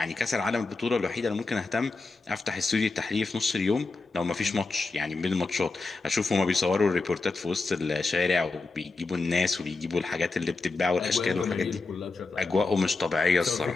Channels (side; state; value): right; quieter; 3.8 dB